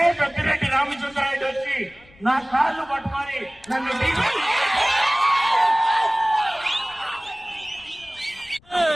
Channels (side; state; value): left; noise; rumble, 27 dB below the sound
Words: పెద్దిరెడ్డి రామచంద్రారెడ్డి వచ్చి నా కాళ్ళు పట్టుకొని నన్ను